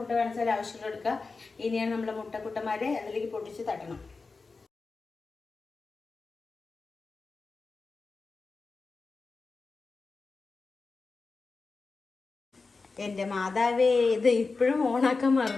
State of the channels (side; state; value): right; quieter; 4.1 dB